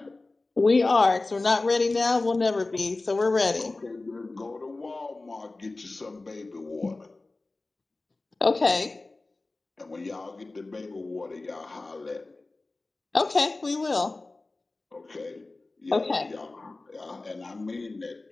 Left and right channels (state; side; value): quieter; right; 3.2 dB